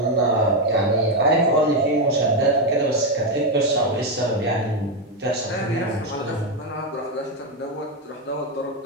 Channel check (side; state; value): both; normal; correlation 0.06